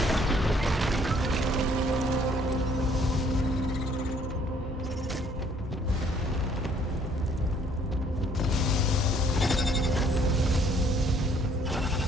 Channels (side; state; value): both; normal; correlation 0.62